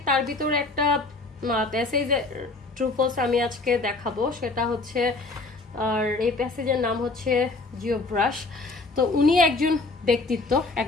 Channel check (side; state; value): right; quieter; 3.5 dB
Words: তার ভিতরে একটা প্যাসেজ ট্রু ফলস আমি আজকে দেখাবো, সেটা হচ্ছে, আর এই প্যাসেজের নাম হচ্ছে জিও ব্রাশ। তো উনি একজন ব্যক্তিত্ব,